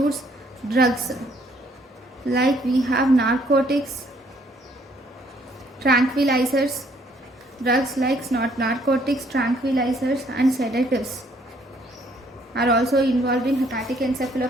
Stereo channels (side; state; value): both; normal; correlation 0.65